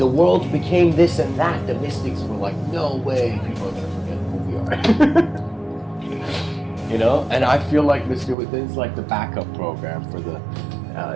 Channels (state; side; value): drops out; left; at 8.3 s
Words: world became this and that, the mystics were like, no way, people are going to forget who we are. You know, and I feel like Mr. Within's like the backup program for the,